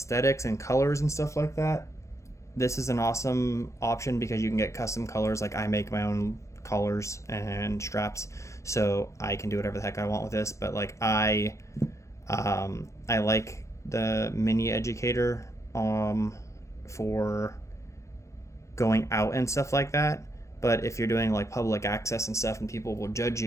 and colors and stuff like that, this is an awesome option because you can get custom colors. Like I make my own collars and straps, so I can do whatever the heck I want with this. But like I like the mini Educator for going out and stuff like that. But if you're doing like public access and stuff and people will judge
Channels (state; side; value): late; right; 0.15 ms